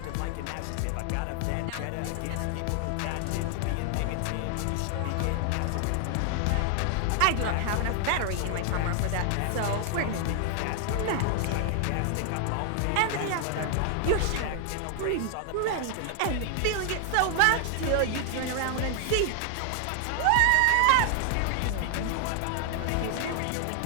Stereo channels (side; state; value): both; different; correlation 0.00